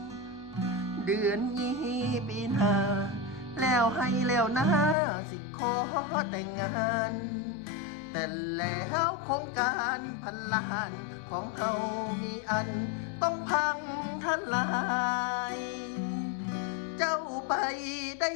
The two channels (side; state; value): right; drops out; at 5.0 s